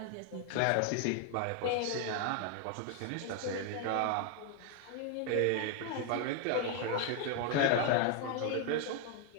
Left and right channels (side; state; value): both; different; correlation 0.01